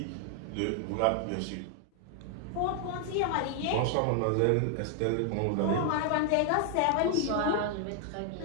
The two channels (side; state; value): both; different; correlation 0.00